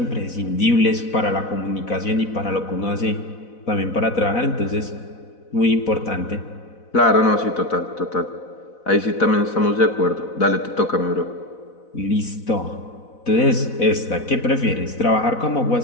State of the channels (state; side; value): late; right; 4.0 ms